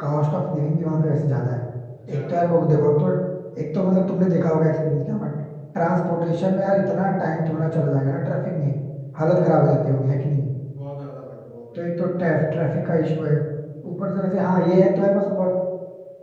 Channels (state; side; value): identical; both; correlation 1.00